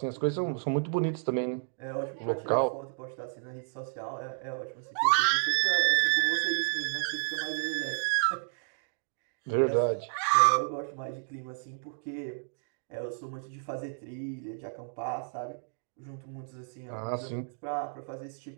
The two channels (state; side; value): silent; left; digital silence